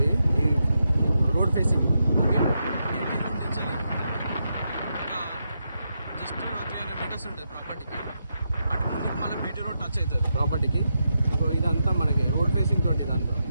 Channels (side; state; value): both; inverted; correlation -0.84